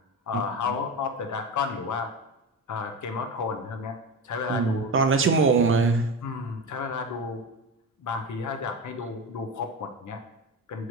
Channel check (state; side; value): normal; both; correlation 0.22